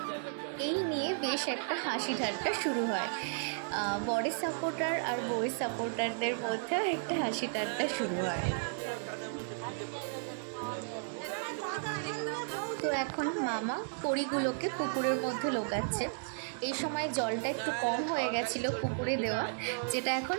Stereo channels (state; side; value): silent; left; digital silence